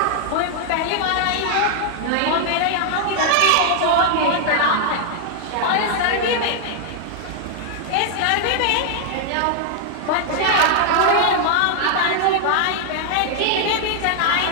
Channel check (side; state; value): both; different; correlation 0.00